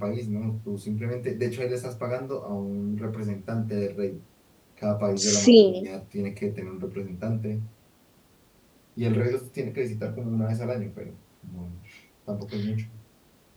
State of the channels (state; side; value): identical; both; correlation 1.00